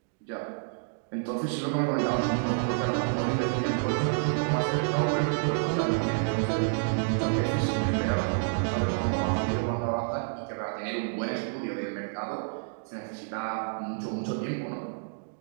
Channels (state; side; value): silent; left; digital silence